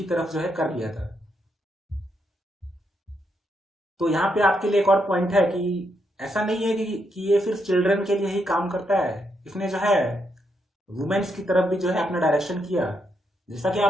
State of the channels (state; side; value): normal; both; correlation 0.79